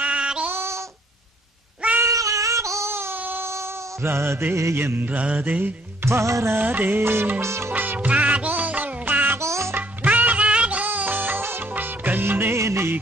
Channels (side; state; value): both; normal; correlation 0.63